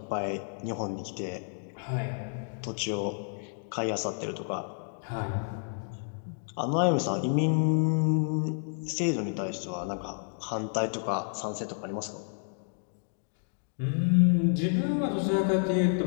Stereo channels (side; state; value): right; silent; 58 dB below the other